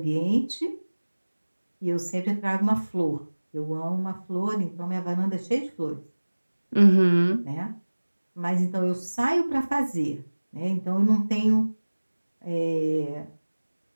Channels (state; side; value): inverted; both; correlation -1.00